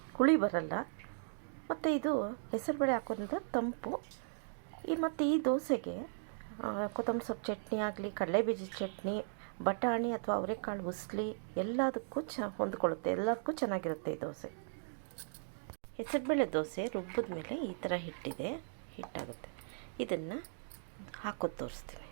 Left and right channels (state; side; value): silent; left; digital silence